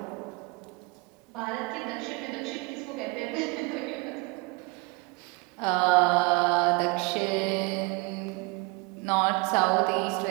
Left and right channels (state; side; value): quieter; left; 27.4 dB